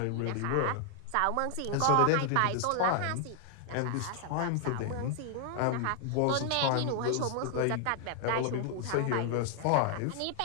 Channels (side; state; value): both; different; correlation 0.00